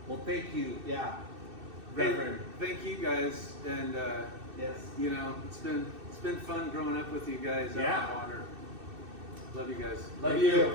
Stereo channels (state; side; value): late; left; 2.6 ms